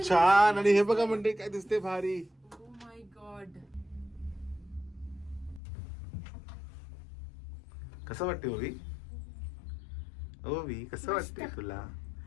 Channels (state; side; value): drops out; right; at 5.6 s